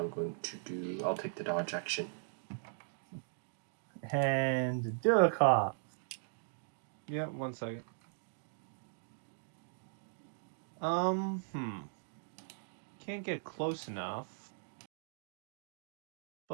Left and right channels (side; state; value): left; silent; digital silence